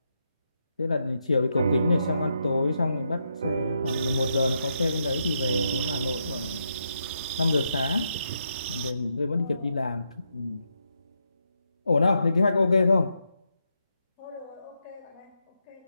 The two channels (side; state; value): both; inverted; correlation -0.82